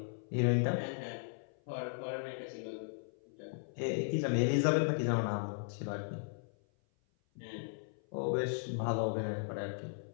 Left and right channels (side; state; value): right; silent; 53 dB below the other